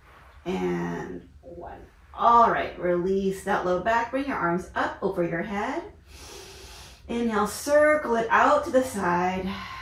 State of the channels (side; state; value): both; identical; correlation 1.00